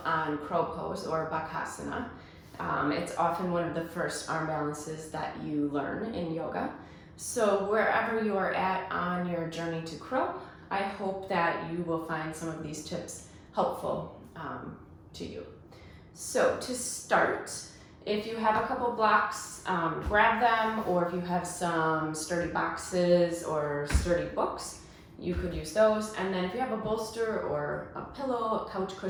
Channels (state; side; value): identical; both; correlation 1.00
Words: on crow pose or Bakasana. It's often one of the first arm balances that you learn in yoga. So wherever you are at on your journey to crow, I hope that you will find some of these tips helpful to you. So to start, if you have a couple blocks, grab them, or if you have some sturdy boxes or sturdy books, you could use those. And then if you have a bolster or a pillow, a couch